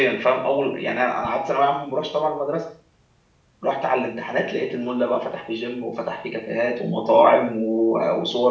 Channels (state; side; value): identical; both; correlation 1.00